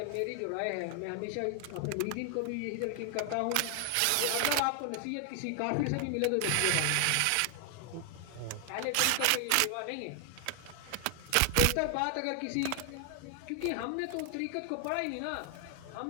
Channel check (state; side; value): different; both; correlation 0.00